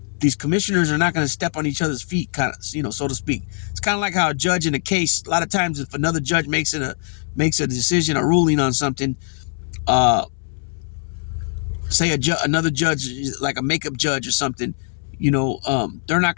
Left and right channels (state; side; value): silent; right; 65 dB below the other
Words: these commissioners are not going to step on each other's feet, kind of, so to speak. It's kind of like how a judge in a case, a lot of times if another judge makes a decision, a ruling on something, say another judge, like a makeup judge or something, they're not